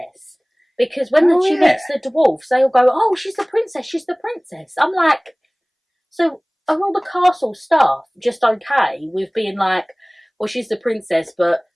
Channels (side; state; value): both; identical; correlation 1.00